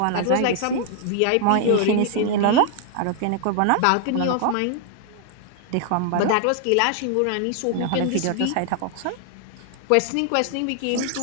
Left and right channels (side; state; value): both; different; correlation 0.00